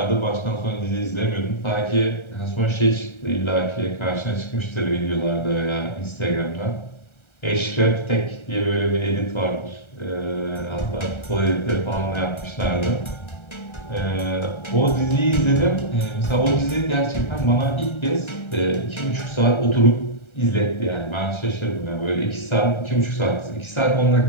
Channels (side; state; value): right; late; 1.3 ms